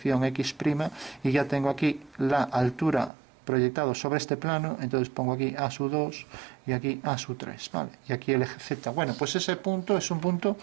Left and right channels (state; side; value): drops out; left; at 3.1 s